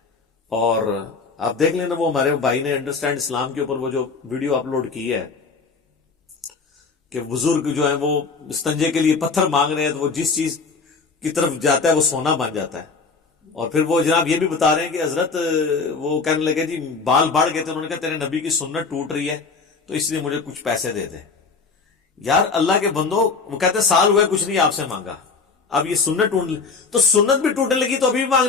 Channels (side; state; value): right; quieter; 4.6 dB